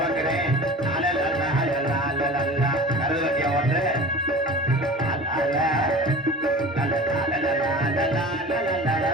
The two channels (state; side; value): normal; both; correlation 0.37